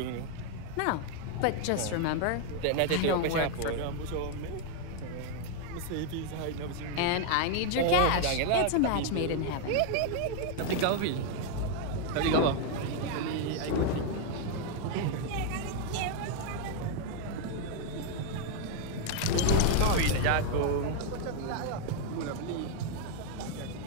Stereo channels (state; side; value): different; both; correlation 0.00